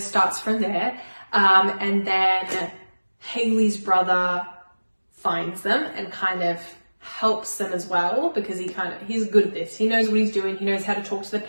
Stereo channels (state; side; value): inverted; both; correlation -1.00